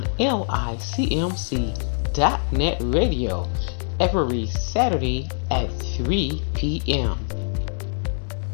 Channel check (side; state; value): right; silent; digital silence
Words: LICMC.net radio every Saturday at 3 p.m.